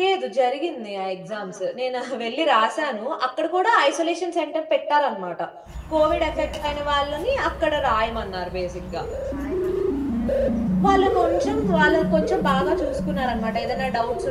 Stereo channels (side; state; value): both; identical; correlation 1.00